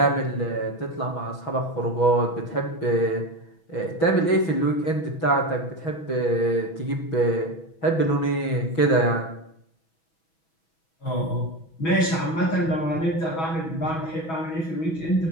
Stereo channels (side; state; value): right; late; 6.2 ms